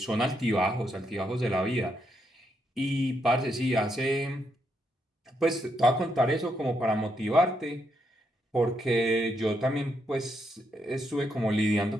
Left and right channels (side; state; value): both; normal; correlation 0.78